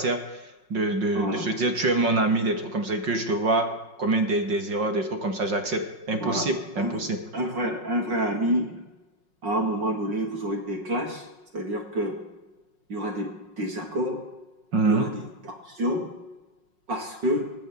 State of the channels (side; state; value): left; late; 5.5 ms